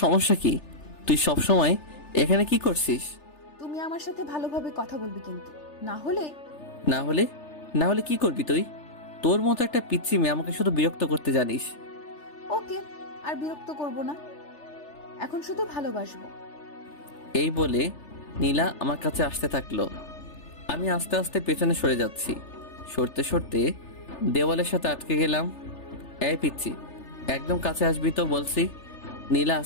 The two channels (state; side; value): late; right; 3.3 ms